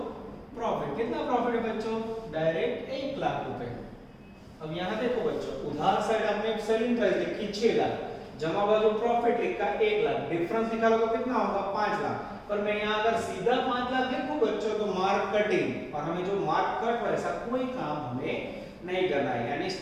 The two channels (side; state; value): both; identical; correlation 1.00